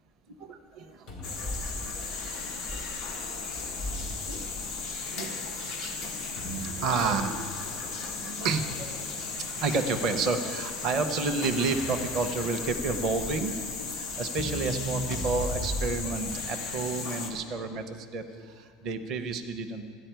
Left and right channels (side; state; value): both; normal; correlation 0.39